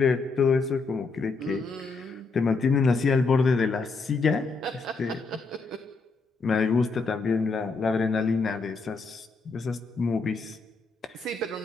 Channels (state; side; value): quieter; right; 4.1 dB